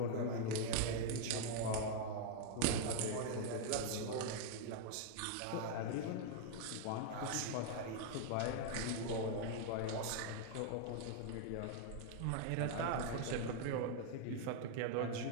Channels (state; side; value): different; both; correlation 0.00